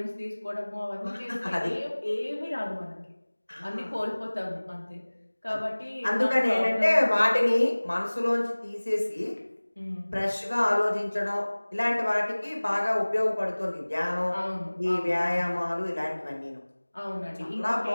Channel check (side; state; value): both; inverted; correlation -1.00